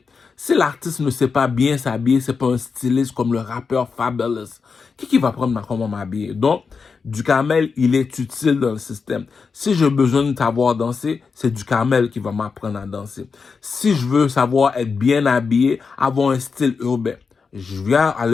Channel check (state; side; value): quieter; right; 5.2 dB